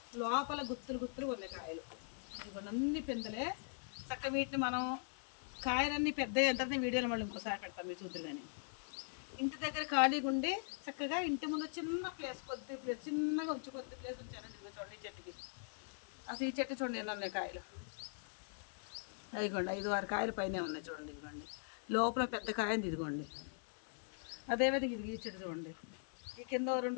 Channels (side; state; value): right; silent; 50 dB below the other